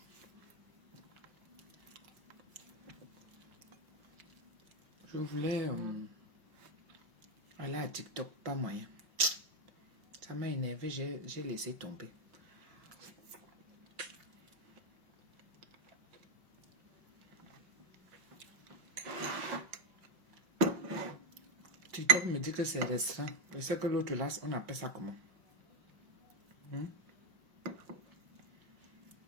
Je voulais aller à TikTok, pas moyen. Ça m'a énervé, j'ai laissé tomber. TikTok me dit que c'est restreint. Je sais que l'autre là, on appelle ça comment?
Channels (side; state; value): left; late; 5.5 ms